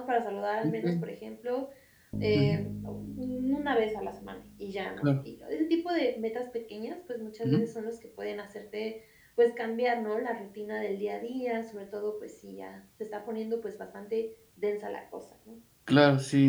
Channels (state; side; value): identical; both; correlation 1.00